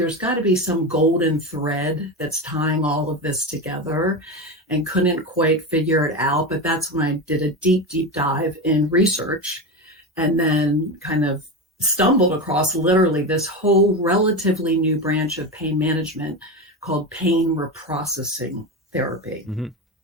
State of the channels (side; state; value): both; normal; correlation 0.20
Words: got to be some golden thread that's tying all of this together, and couldn't quite figure it out. But that's when I did a deep dive in research, and then kind of stumbled across literally this whole relatively new branch of pain management called pain reprocessing therapy.